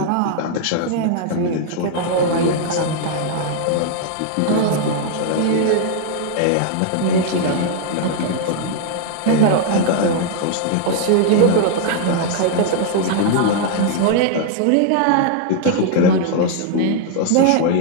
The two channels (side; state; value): both; different; correlation -0.01